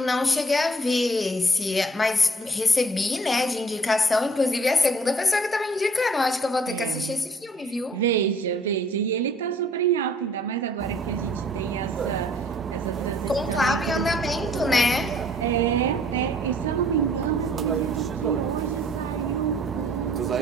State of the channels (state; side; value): normal; both; correlation 0.57